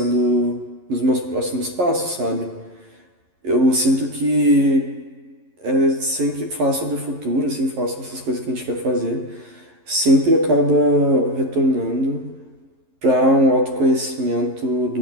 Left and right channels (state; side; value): late; left; 11 ms